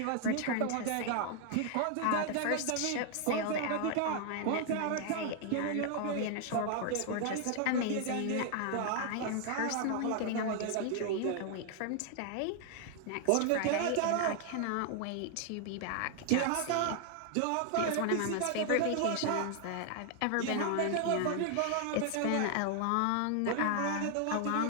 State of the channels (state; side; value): different; both; correlation 0.00